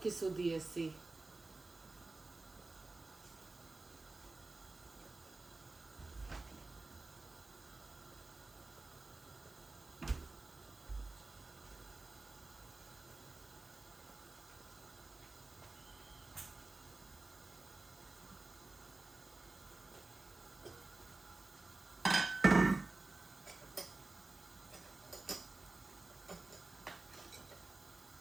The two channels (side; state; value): left; quieter; 3.3 dB